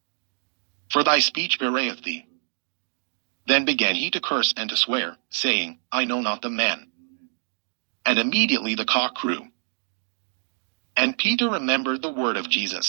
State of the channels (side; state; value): left; silent; digital silence